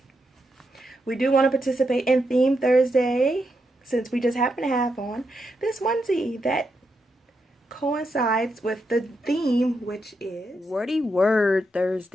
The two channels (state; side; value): normal; both; correlation 0.83